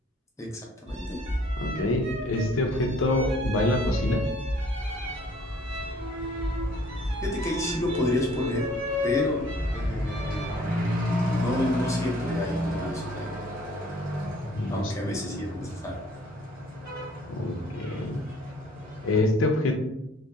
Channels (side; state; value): both; normal; correlation 0.57